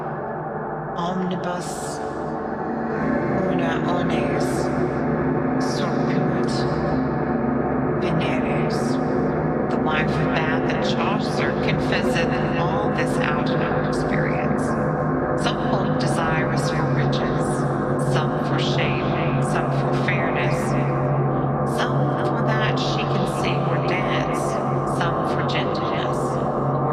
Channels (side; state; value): both; identical; correlation 1.00